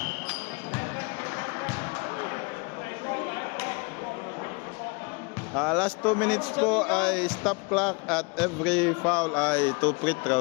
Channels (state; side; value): quieter; right; 30.0 dB